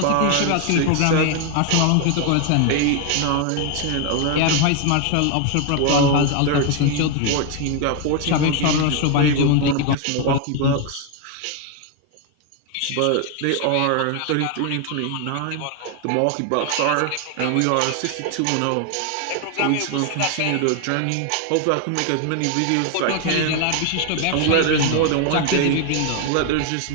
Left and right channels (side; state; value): both; different; correlation 0.01